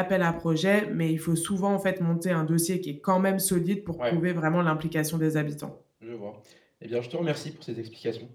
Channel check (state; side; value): identical; both; correlation 1.00